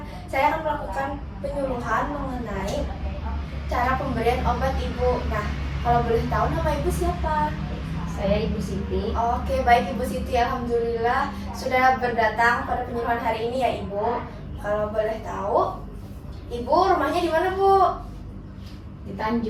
saya akan melakukan penyuluhan mengenai cara pemberian obat, Ibu. Nah, kalau boleh tahu nama Ibu siapa? Saya Ibu Siti. Oke, baik Ibu Siti. Alhamdulillah sudah berdatang pada penyuluhan hari ini ya, Ibu. Kalau boleh tahu, Ibu rumahnya di mana, Bu? Di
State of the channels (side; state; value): both; identical; correlation 1.00